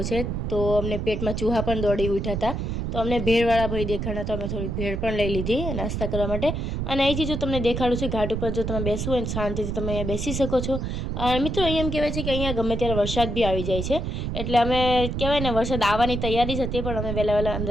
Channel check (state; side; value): noise; right; rumble, 3 dB below the sound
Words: છે। તો અમને પેટમાં ચૂહા પણ દોડી ઉઠ્યા હતા, તો અમને ભેળવાળા ભાઈ દેખાડા, તો અમે થોડીક ભેળ પણ લઈ લીધી નાસ્તા કરવા માટે। અને અહીંથી જો તમને દેખાડું છું ઘાટ ઉપર, જો તમે બેસવું હોય ને શાંતિથી તમે અહીંયા બેસી શકો છો। મિત્રો, અહીંયા એમ કહેવાય છે કે અહીંયા ગમે ત્યારે વરસાદ બી આવી જાય છે, એટલે અમે કહેવાય ને વરસાદ આવવાની તૈયારી જ હતી, પણ અમે વહેલા